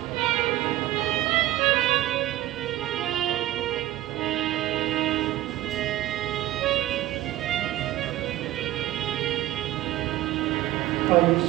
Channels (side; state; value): left; quieter; 15.0 dB